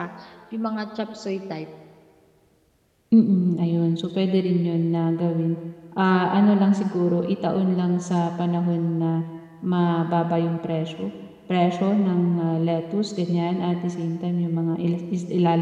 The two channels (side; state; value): both; identical; correlation 1.00